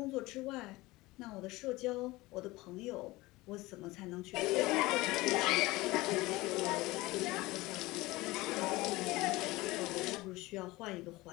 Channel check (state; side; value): quieter; right; 20.4 dB